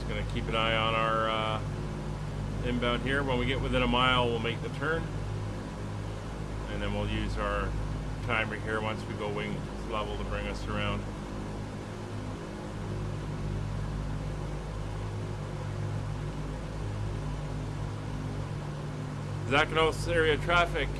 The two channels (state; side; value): identical; both; correlation 1.00